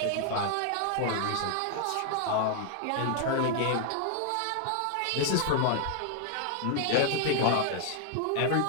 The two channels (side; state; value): both; different; correlation 0.00